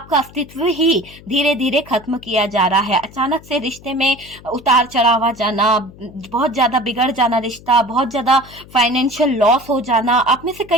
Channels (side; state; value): left; noise; hum, 21 dB below the sound